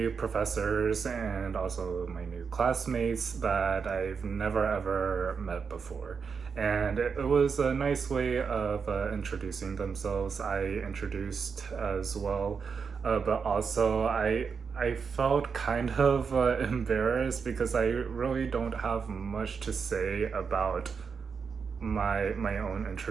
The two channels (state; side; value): quieter; left; 5.8 dB